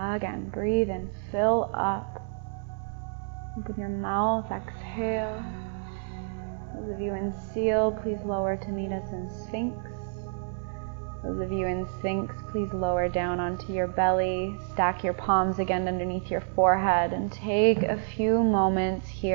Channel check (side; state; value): left; silent; digital silence